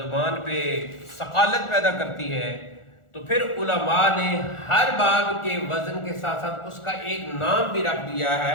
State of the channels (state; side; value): late; right; 1.4 ms